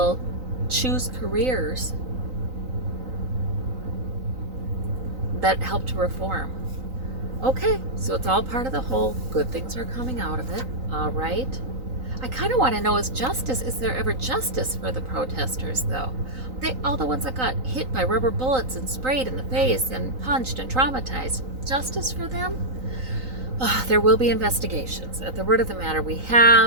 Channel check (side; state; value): left; late; 3.9 ms